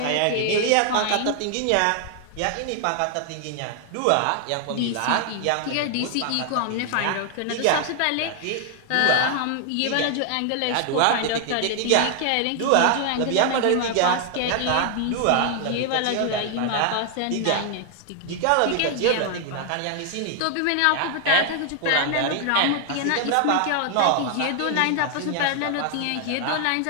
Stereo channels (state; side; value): different; both; correlation 0.00